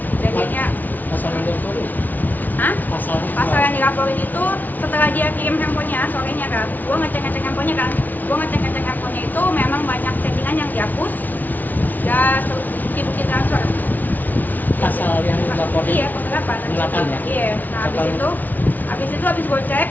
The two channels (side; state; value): right; late; 0.081 ms